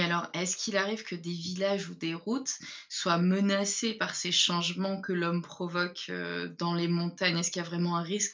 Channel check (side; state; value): both; identical; correlation 1.00